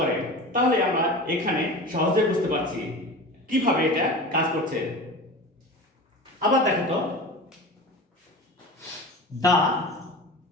তাহলে আমরা এখানে সহজে বুঝতে পারছি কিভাবে এটা কাজ করছে। আবার দেখো তো, the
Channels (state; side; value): normal; both; correlation 0.33